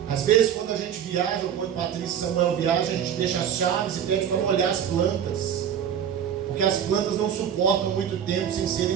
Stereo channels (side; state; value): left; quieter; 8.9 dB